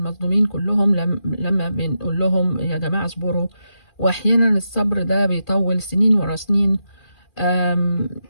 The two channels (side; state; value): right; late; 2.4 ms